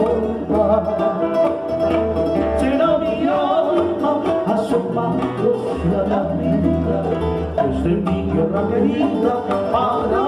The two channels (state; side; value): identical; both; correlation 1.00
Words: Será mi alma asomándose a la vida desde mi tierra querida para